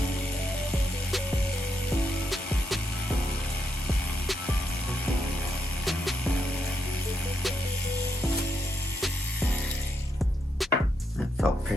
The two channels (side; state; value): both; normal; correlation 0.80